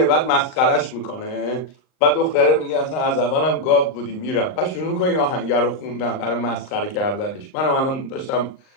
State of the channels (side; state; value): right; late; 39 ms